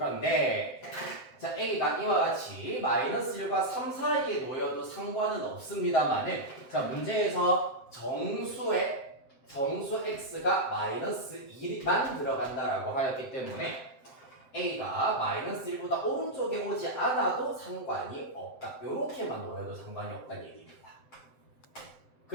자, a가 이와 같이 마이너스 1과 3 사이에 놓여도 상관은 없습니다만은 자, 문제에서 정수 x가 마이너스 2만 들어간다라고 하였기 때문에 a가 마이너스 1보다 오른쪽에 오지 않아도 상관이 없다. 요렇게만 놓여도 상관이 없다는 얘기입니다.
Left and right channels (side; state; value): right; late; 7.7 ms